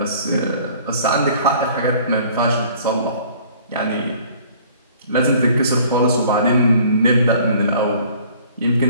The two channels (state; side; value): inverted; both; correlation -0.53